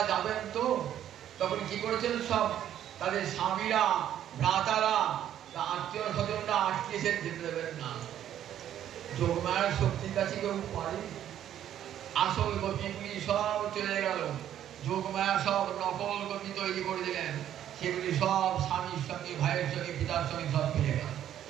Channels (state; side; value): quieter; left; 10.9 dB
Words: যাবেন তো তখন কি করেছেন? সব তাদের স্বামীরা, ভ্রাতারা, আত্মীয় স্বজনরা আটকেছেন, যেতে দেবেন না। যোগমায়ার শক্তির কাছে কেউ পারে? আসল গোপীগুলি সব চলে গেল, যোগমায়া সব নকল গোপী তৈরি করে দিলেন, সেগুলি সব স্বামীর সঙ্গে, ভাইয়ের সঙ্গে, পিতার সঙ্গে সব ফিরে গেল।